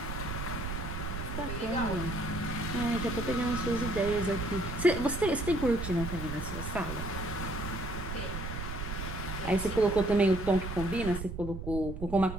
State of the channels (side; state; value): right; noise; rumble, 6 dB below the sound